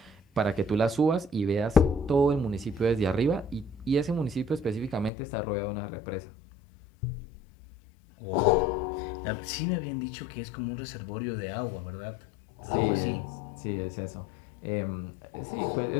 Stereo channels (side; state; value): right; drops out; at 5.1 s